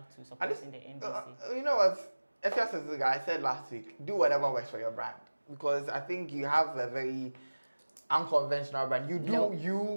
to supporting the NDC. You know what? Afia schwarzeneger, I said last week, do whatever works for your brand. Because I think you have a very unconventional brand. You do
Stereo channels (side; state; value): both; inverted; correlation -1.00